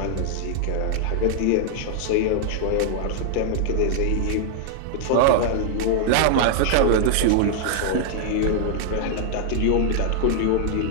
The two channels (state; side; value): different; both; correlation -0.01